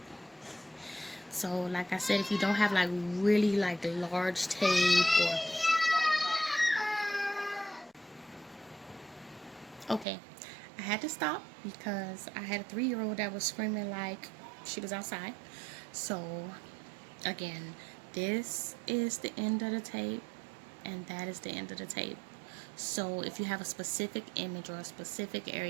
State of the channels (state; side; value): drops out; left; at 10.1 s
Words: So like I said, if you don't have like really like large tape, or okay, I had to stop because I had a 3-year-old that was screaming like she was outside. So again, this is the end of the tape, and that is the end of the tape. So if you have a specific image or a specific